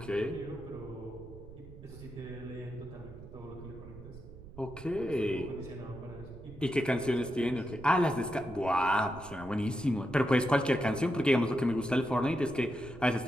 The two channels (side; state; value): right; noise; rumble, 16 dB below the sound